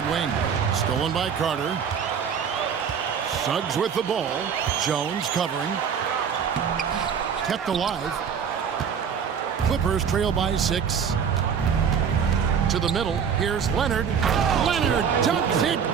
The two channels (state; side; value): quieter; left; 7.2 dB